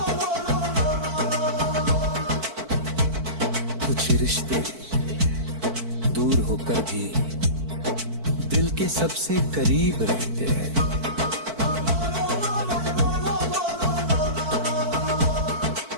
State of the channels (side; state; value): left; late; 4.5 ms